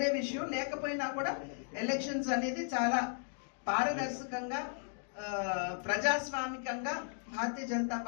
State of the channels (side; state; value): right; silent; 54 dB below the other